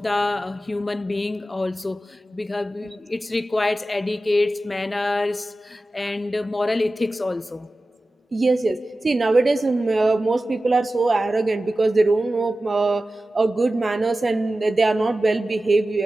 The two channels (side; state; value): both; normal; correlation 0.95